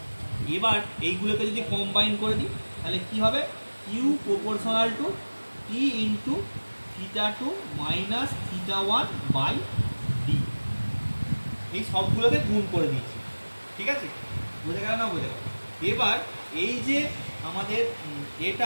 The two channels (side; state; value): both; inverted; correlation -1.00